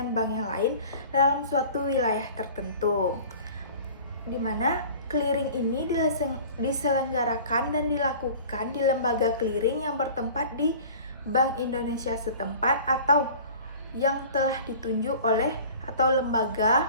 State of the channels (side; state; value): both; inverted; correlation -0.44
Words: bank yang lain dalam suatu wilayah tertentu, di mana clearing ini diselenggarakan dan dilakukan di lembaga clearing yang bertempat di Bank Indonesia setempat atau yang telah ditunjuk oleh atau lembaga